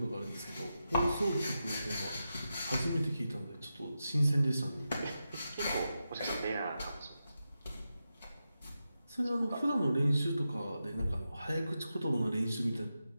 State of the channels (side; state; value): both; inverted; correlation -0.89